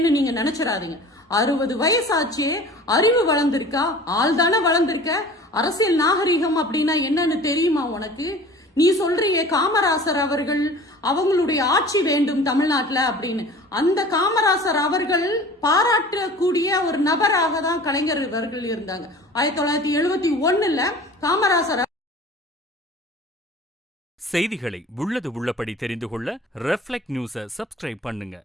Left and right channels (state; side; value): normal; both; correlation 0.43